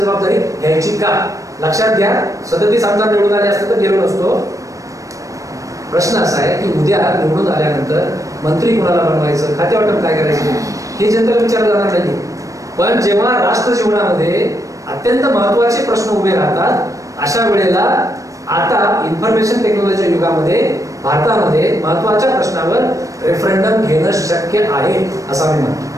जबाबदारी घ्यायची का? लक्षात घ्या, 37 आमदार निवडून आले असते तर गेलो नसतो. प्रश्न असा आहे की उद्या निवडून आल्यानंतर मंत्री कोणाला बनवायचं, खाते वाटप काय करायचं, हे जनतेला विचारलं जाणार नाही. पण जेव्हा राष्ट्र जीवनामध्ये अत्यंत महत्त्वाचे प्रश्न उभे राहतात, अशा वेळेला आता इन्फॉर्मेशन टेक्नॉलॉजीच्या युगामध्ये भारतामध्ये महत्त्वाच्या प्रश्नावर रेफरंडम घेणं शक्य आहे असं मी म्हणतो.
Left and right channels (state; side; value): late; left; 0.16 ms